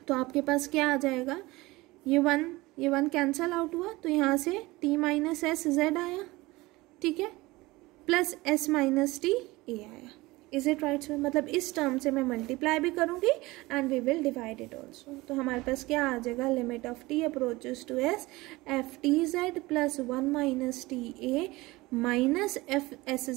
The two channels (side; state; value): left; quieter; 20.8 dB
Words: तो आपके पास क्या आ जाएगा, ये वन कैंसल आउट हुआ, तो यहाँ से t माइनस एस जेड आया, ठीक है, plus s minus T A आया। Is it right? मतलब इस टर्म से मैं मल्टीप्लाई भी करूंगी and we will divide it also. तो हमारे पास क्या आ जाएगा, limit of t approaches to s F T Z plus 1 minus T A minus F S